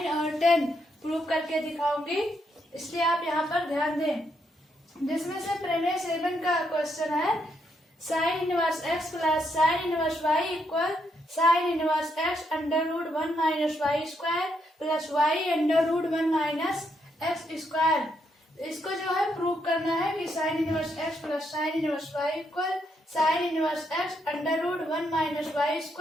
और 10 प्रूव करके दिखाऊंगी, इसलिए आप यहाँ पर ध्यान दें। जिसमें से प्रमेय 7 का क्वेश्चन है sine inverse x plus sine inverse y equal sine inverse x under root 1 minus y square plus y under root 1 minus x square. इसको जो है प्रूव करना है कि sine inverse x plus sine inverse y equal sine inverse x under root 1 minus y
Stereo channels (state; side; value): normal; both; correlation 0.77